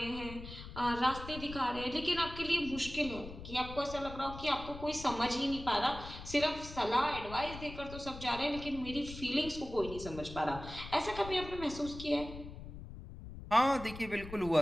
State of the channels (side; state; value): left; noise; rumble, 12 dB below the sound